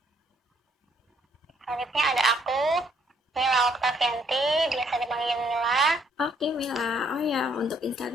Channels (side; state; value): both; normal; correlation 0.67